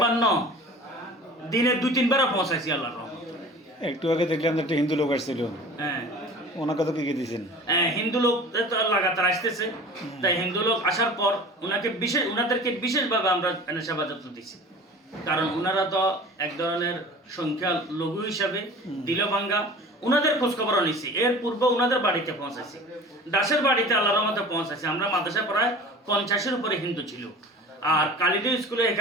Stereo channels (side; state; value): both; normal; correlation 0.41